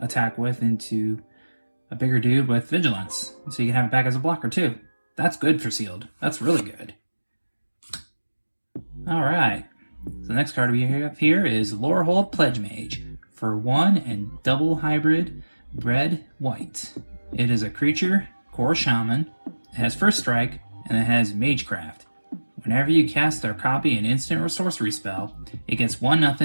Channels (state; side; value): inverted; both; correlation -1.00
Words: with into a bigger dude with vigilance. So you can have it back as a blocker too. That's good for sealed. That's really good. Alright. So the next card we have here is Lorehold Pledge Mage for 1 and double hybrid red white. It is a creature, core shaman. It has first strike and it has magecraft. Whenever you cast or copy an instant or sorcery spell, it gets 1/0